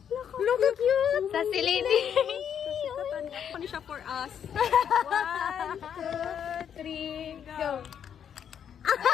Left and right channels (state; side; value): quieter; right; 8.5 dB